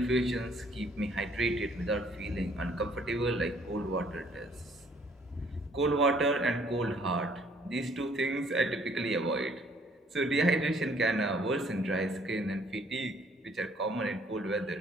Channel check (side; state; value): both; normal; correlation 0.61